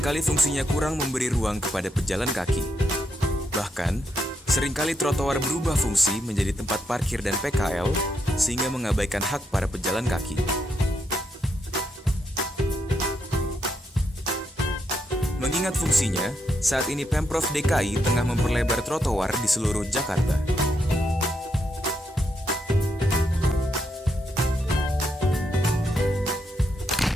fungsinya kurang memberi ruang kepada pejalan kaki. Bahkan, seringkali trotoar berubah fungsi menjadi tempat parkir dan PKL, sehingga mengabaikan hak para pejalan kaki. Mengingat fungsinya, saat ini Pemprov DKI tengah memperlebar trotoar di seluruh Jakarta.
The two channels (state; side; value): normal; both; correlation 0.80